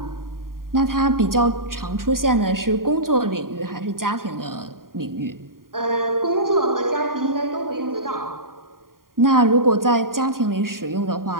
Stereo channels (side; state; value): left; late; 0.91 ms